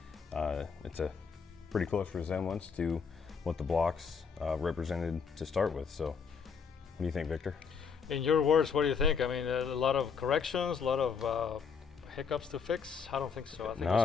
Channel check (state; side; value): quieter; right; 6.1 dB